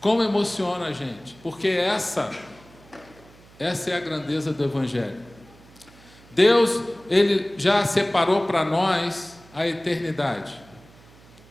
Como emociona a gente, porque essa é a grandeza do Evangelho. Deus, Ele já separou para nós a eternidade.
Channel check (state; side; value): noise; right; hum, 25 dB below the sound